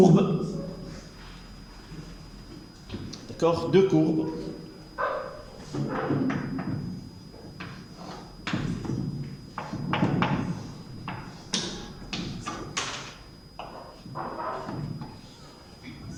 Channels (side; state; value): both; identical; correlation 1.00